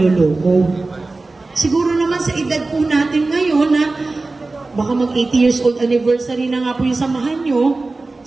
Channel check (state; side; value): quieter; left; 3.4 dB